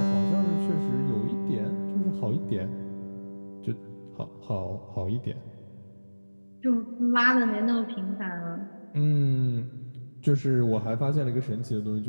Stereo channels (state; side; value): inverted; both; correlation -1.00